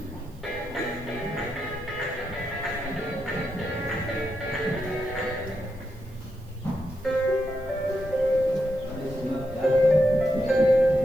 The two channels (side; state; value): right; noise; hiss, 29 dB below the sound